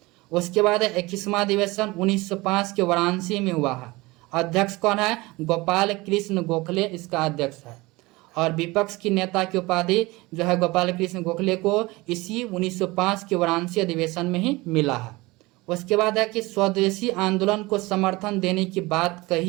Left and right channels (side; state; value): left; quieter; 22.0 dB